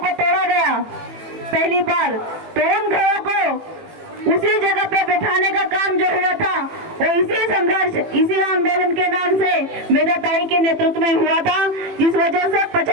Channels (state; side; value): late; left; 18 ms